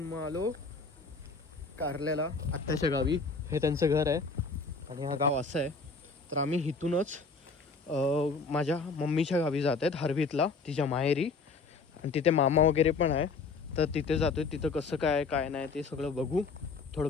मग आलो कारल्याला आत्याच्या गावी. हे त्यांचं घर आहे आणि हा गाव असं आहे. तर आम्ही इथूनच माझ्या मम्मीच्या गावी जात आहेत, हरवीतला, तिच्या माहेरी. आणि तिथे मामा वगैरे पण आहे, तर तिथे जातो आहे. तिथं कसं काय नाही ते सगळं बघू, थोडं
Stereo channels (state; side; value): quieter; right; 4.4 dB